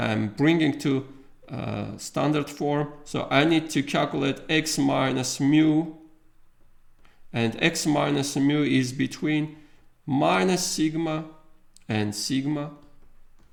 bringing to standard form. So I need to calculate x minus mu, and x minus mu is between minus sigma and sigma.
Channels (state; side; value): identical; both; correlation 1.00